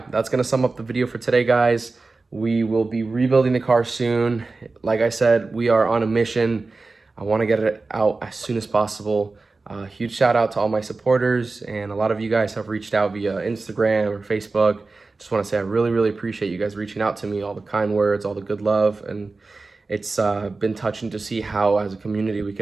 that's gonna sum up the video for today, guys. We will be rebuilding the car soon. Like I said, we are on a mission. I want to get it out as soon as possible. Huge shout out to all my supporters, and a lot of you guys have reached out via Instagram or Facebook. Just want to say I really, really appreciate you guys reaching out to me, all the kind words, all the good love, and it's been touching to see how as a community we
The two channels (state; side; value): quieter; left; 3.7 dB